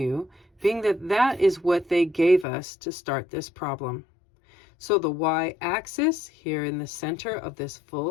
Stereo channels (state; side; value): drops out; right; at 2.5 s